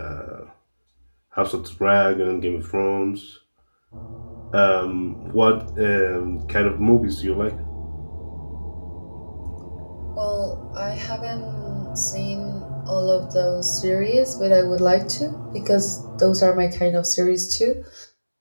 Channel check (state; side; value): inverted; both; correlation -1.00